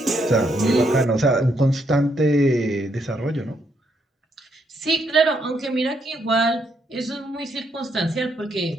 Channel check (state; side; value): normal; both; correlation 0.75